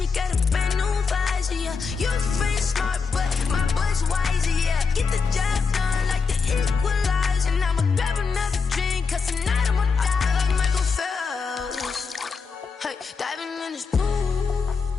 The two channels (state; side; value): quieter; right; 5.1 dB